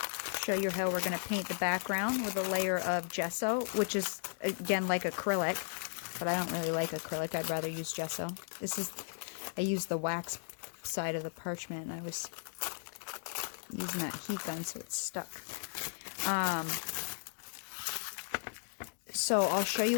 show you how we're going to paint the background with a layer of gesso, which is, again, like acrylic, but I don't really like acrylic. I'd rather use gesso. I used the wax side of the parchment, and I was using that heat gun, so it's stuck. So I'll show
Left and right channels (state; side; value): silent; right; digital silence